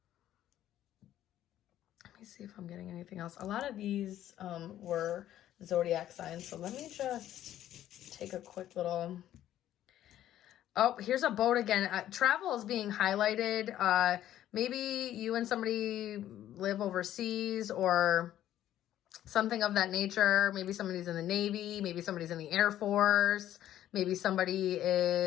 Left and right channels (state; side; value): quieter; right; 12.3 dB